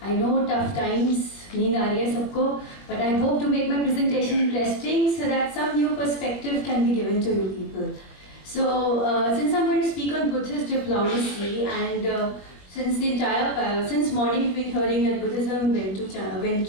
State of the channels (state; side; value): late; right; 21 ms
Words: know tough times, need aa rahi hai sabko, but I hope to make my presentation interesting so that some new perspective can be given to you people. So, since I'm going to speak on Buddhist diplomacy and since morning we've been hearing that Buddhism went